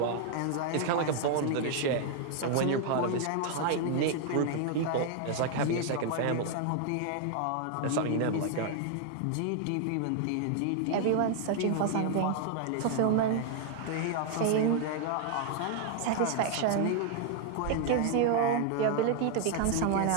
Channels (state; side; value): different; both; correlation 0.00